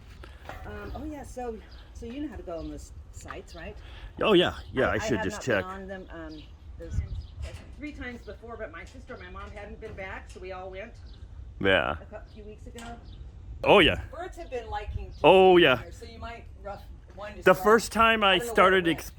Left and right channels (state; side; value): identical; both; correlation 1.00